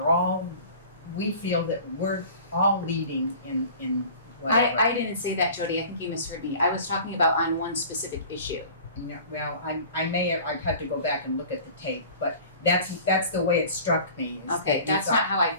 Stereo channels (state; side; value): inverted; both; correlation -0.43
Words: we feel that we're all leading in whatever. I didn't say that, Jody. I think you misheard me. I was talking about on one specific issue. Yeah, well, I've had to go back and look at the tape, but that's the way it struck me. Is Okay, that that's not how I